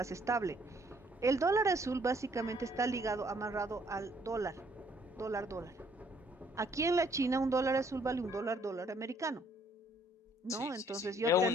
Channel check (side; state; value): both; normal; correlation 0.65